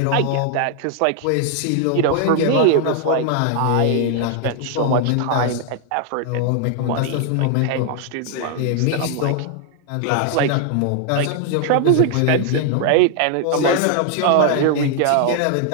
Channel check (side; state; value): both; different; correlation 0.00